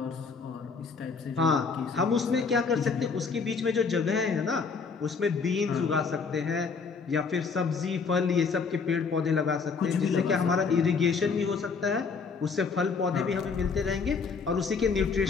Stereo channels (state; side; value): quieter; right; 5.1 dB